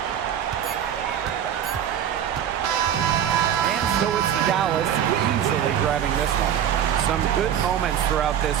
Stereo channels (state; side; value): quieter; left; 9.7 dB